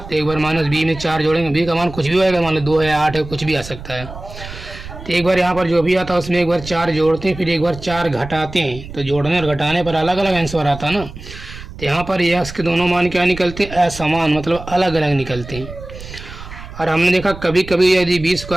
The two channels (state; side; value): noise; right; rumble, 13 dB below the sound